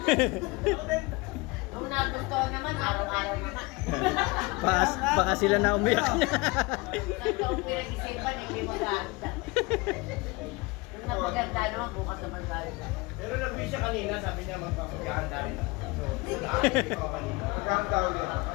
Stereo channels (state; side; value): quieter; right; 24.9 dB